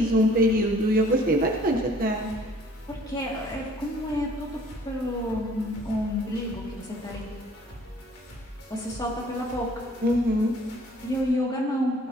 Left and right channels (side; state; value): both; normal; correlation 0.56